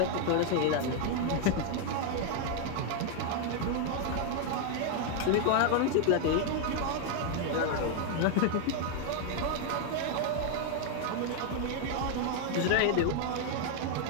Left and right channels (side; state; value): both; different; correlation 0.00